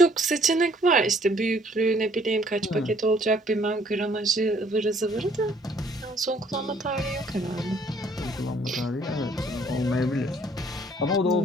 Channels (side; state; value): both; normal; correlation 0.62